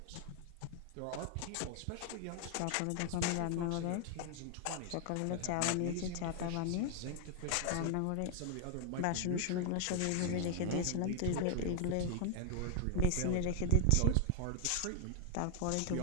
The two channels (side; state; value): both; different; correlation 0.00